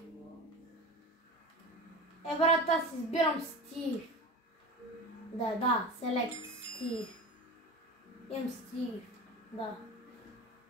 Брат, аз избирам Стив. Да, Select Стив. Имам Стив, да.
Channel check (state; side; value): normal; both; correlation 0.31